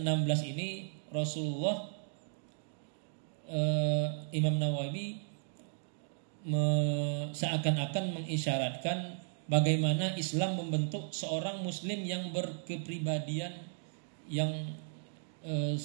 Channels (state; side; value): silent; left; digital silence